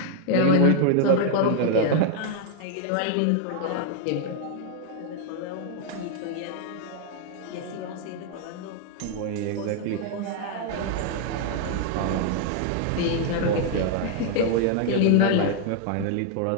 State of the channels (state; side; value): different; both; correlation 0.00